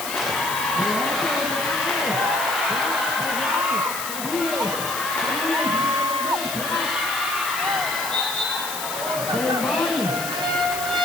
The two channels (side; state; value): left; noise; hiss, 6 dB below the sound